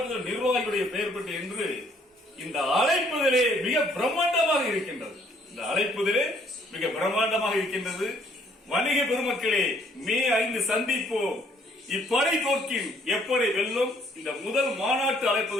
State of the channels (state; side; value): normal; both; correlation 0.64